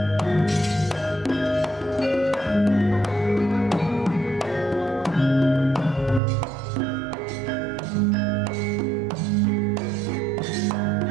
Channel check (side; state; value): left; drops out; at 6.2 s